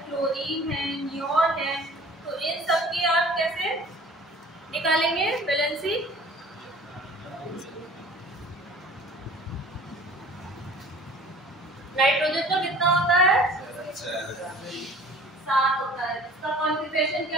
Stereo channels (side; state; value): both; normal; correlation 0.48